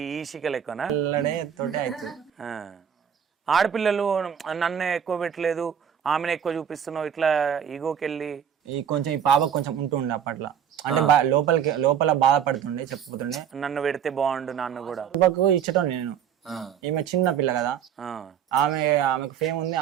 సిక్కలు ఎక్కువనా? తోటే అవుతుంది. ఆడపిల్లలు నన్నే ఎక్కువ పెట్టలేదు, ఆమెను ఎక్కువ చూపిస్తున్నావు, ఇట్లా ఈగోకి వెళ్ళి ఈ కొంచెం ఈ పాప కొంచెం ఉంటుండే అప్పట్లో, అంటే లోపల బాధపడుతుండే, చెప్పుతుండే నన్ను పెడితే బాగుండు నాన్న కూడా. పాపకు ఇచ్చటం నేను, ఈమె చిన్న పిల్ల కదా, ఆమెకు ఫేమ్ ఉంది,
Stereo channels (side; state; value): left; quieter; 8.7 dB